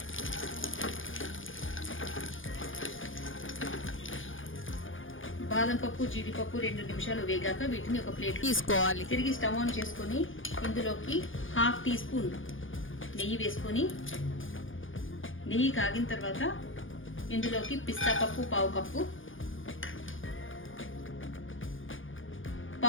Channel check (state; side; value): late; right; 0.58 ms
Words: బాదం పప్పు జీడిపప్పు 2 నిమిషాలు వేగాక వీటిని ఒక ప్లేట్ తీసుకోవాలి। తిరిగి స్టవ్ ఆన్ చేసుకొని ఇందులోకి హాఫ్ టీ స్పూన్ నెయ్యి వేసుకొని నెయ్యి కాగిన తర్వాత ఇందులోకి పిస్తా పప్పు పావు